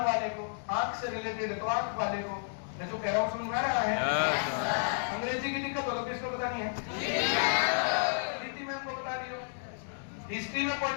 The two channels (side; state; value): right; silent; digital silence